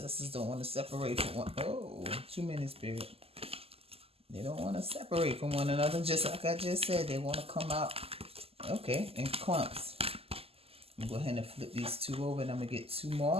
don't want to separate from one. Oh, too many spirit. They don't want to separate from one another. Just like I just said, they want to come out, okay, in clumps. I'm going to go ahead and flip these two over, and I'm going to get two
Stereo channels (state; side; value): late; left; 0.29 ms